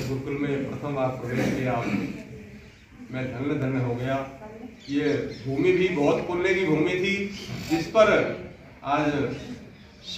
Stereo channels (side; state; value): both; identical; correlation 1.00